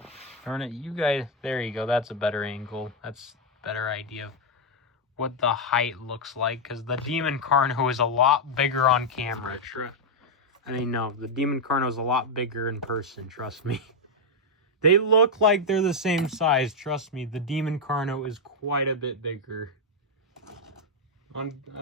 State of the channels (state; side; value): normal; both; correlation 0.00